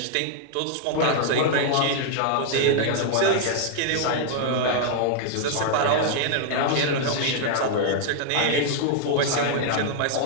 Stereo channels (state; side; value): different; both; correlation 0.00